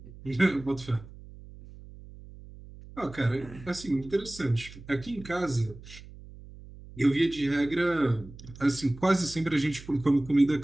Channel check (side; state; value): right; noise; hum, 17 dB below the sound